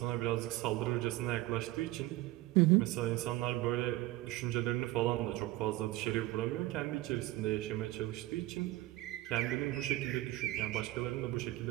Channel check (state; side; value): quieter; left; 17.0 dB